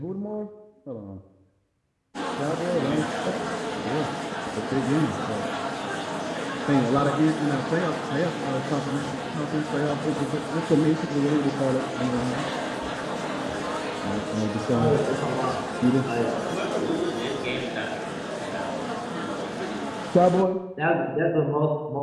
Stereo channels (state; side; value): identical; both; correlation 1.00